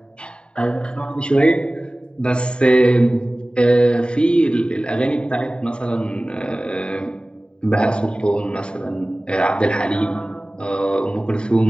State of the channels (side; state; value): right; late; 0.050 ms